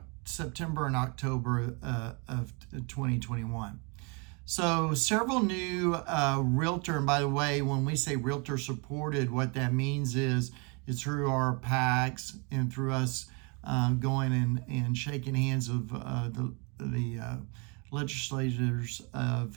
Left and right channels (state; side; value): quieter; left; 32.8 dB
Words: September and October of 2021. So several new realtor, and by the way, when we say realtor supported, what that means is through our PACs and through us going and shaking hands of the legislators